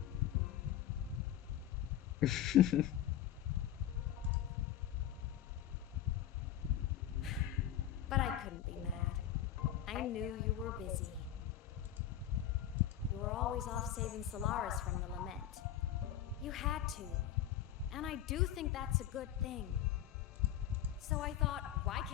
But I couldn't be mad. I knew you were busy. You were always off saving Solaris from the lament. You had to. And I do think that's a good thing. So I thought, why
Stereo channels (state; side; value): quieter; right; 11.2 dB